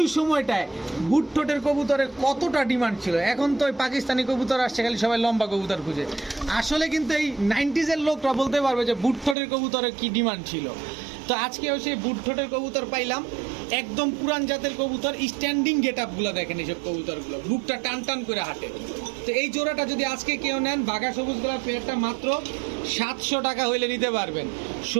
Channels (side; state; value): left; drops out; at 9.3 s